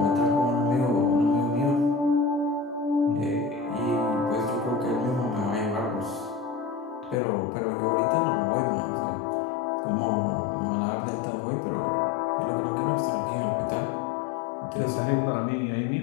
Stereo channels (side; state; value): right; drops out; at 7.2 s